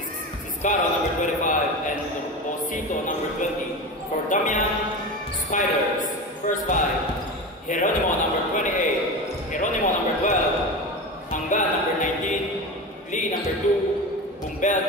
Ciscaro, number 25. And Osito, number 20. For Damian Spiders, first 5. Geronimo, number 28. Geronimo, number 12. Hanggan, number 19. Lee, number 2. Bumbel,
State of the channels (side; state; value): both; normal; correlation 0.26